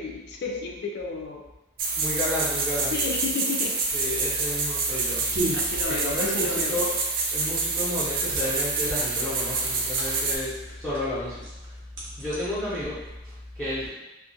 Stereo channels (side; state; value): both; normal; correlation 0.14